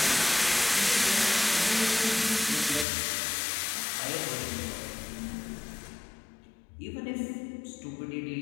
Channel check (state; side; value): drops out; right; at 2.9 s